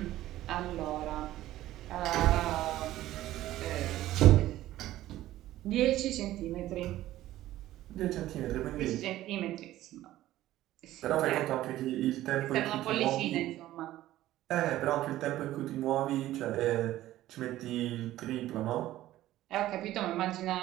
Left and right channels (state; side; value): quieter; left; 14.7 dB